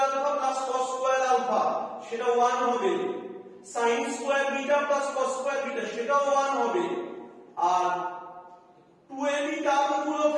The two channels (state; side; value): identical; both; correlation 1.00